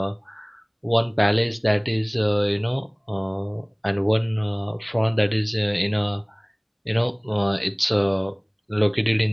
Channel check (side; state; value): both; identical; correlation 1.00